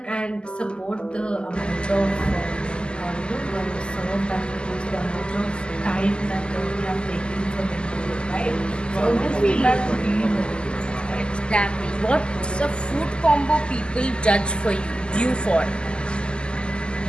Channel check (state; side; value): late; right; 0.049 ms